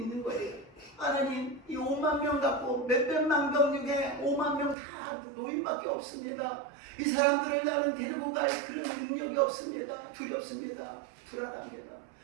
거예요. 하나님, 이 5만 명 갖고 몇백만 명 중에 5만 명 다 노인밖에 없습니다. 이 사람들을 나는 데리고 갈 그런 능력이 없습니다. 두렵습니다. 불안합니다.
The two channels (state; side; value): drops out; left; at 4.8 s